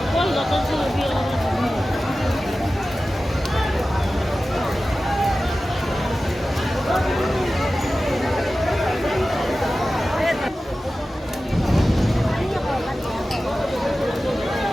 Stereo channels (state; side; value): normal; both; correlation 0.95